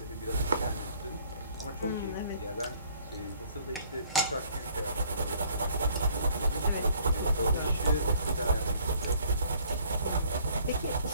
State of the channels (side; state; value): both; inverted; correlation -0.59